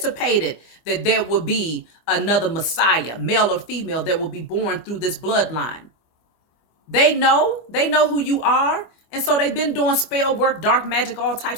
that there would be another Messiah, male or female, that will be born through this bloodline. They know who you are. And so they've been doing spell work, dark magic, all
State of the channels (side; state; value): right; late; 25 ms